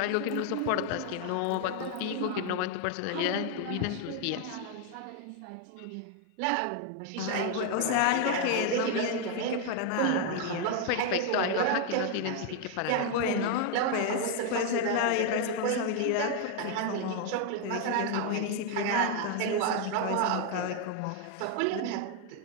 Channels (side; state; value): both; different; correlation 0.00